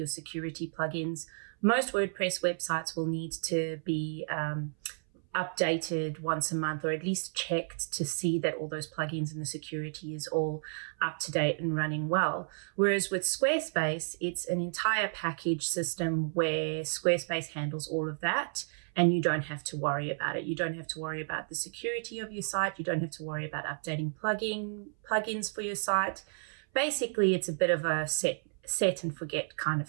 security plugins, most WordPress websites will need to be updated once a month, or at least checked to see that all those plugins and the security is all up to date and running well. Whereas with Squarespace, it's an entire package system where Squarespace handles all of that, and you don't have to worry about it. You don't have to worry about the security of your site. You don't have to worry about updating plugins for your site. Basically, it's a bit of a set and forget kind of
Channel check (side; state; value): left; silent; 56 dB below the other